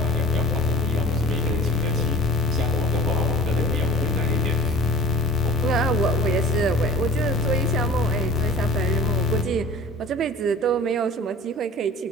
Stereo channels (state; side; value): normal; both; correlation 0.43